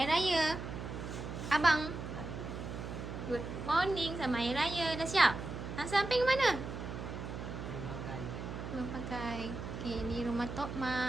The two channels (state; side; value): noise; right; hum, 7 dB below the sound